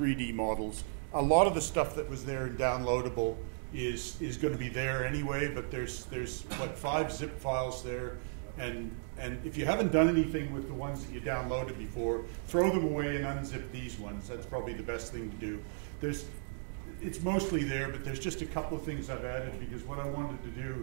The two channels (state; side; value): silent; left; digital silence